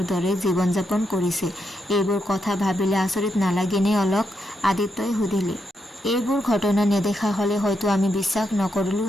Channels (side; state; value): both; normal; correlation 0.82